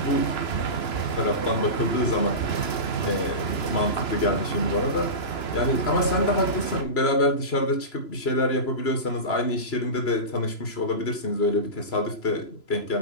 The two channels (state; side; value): late; right; 3.0 ms